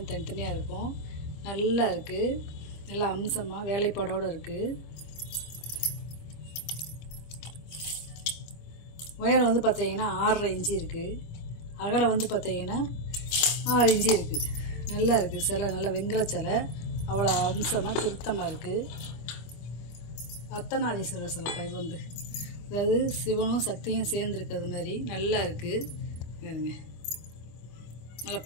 தனித்தனியாக இருக்கும். நல்லா இருக்குது, நல்லா அம்சமாக வேலைப்பாடோடு இருக்குது. உயரம் வந்து பார்த்தீங்கன்னா 6.5 இன்ச்சு இருக்குது. அகலம் வந்து பார்த்தீங்கன்னா 6 இன்ச்சு இருக்குது. நல்லா இருக்குது சிலை, நல்லா வெங்கல சிலை, அவ்வளோ அம்சமாக திருத்தமாக இருக்குது. அர்த்தநாரீஸ்வரர் சிலைப்பா. இது வந்து அதாவது சிவனும் சக்தியும் சேர்ந்துருக்கிறது மாதிரி நல்லா இருக்குது. பாருங்க, நல்லா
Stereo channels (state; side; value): late; right; 25 ms